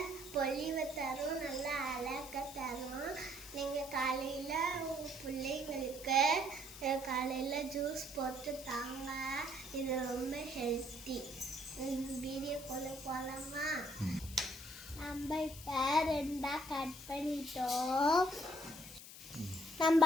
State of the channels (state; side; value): noise; left; hiss, 14 dB below the sound